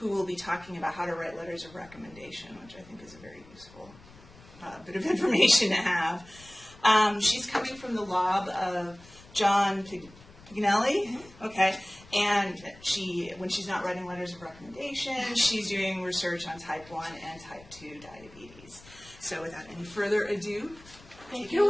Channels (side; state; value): left; noise; rumble, 22 dB below the sound